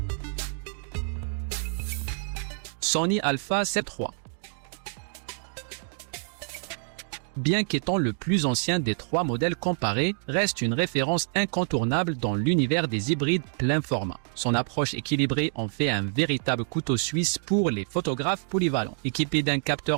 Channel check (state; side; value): silent; left; digital silence